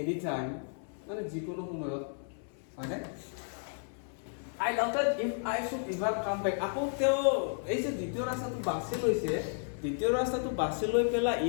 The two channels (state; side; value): silent; right; 56 dB below the other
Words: time মানে যিকোনো সময়ত মানে I doubted if I should ever come back আকৌ তেওঁ এই যে দ্বিতীয় ৰাস্তাটো বাছি লৈছে দ্বিতীয় ৰাস্তাটো বাছি লৈ পেলা